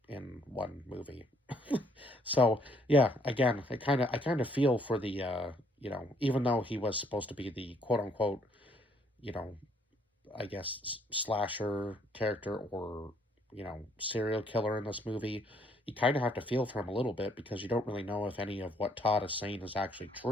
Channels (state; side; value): normal; both; correlation 0.66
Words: in one movie. So yeah, again, I kind of feel for the even though he was supposed to be the quote unquote, you know, I guess slasher character or serial killer in this movie, you kind of have to feel for him a little bit because you don't really know if any of what Todd is saying is actually